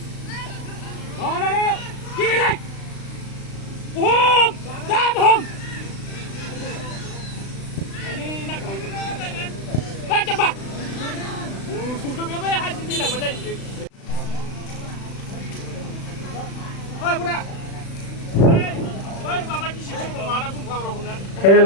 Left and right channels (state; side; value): late; right; 36 ms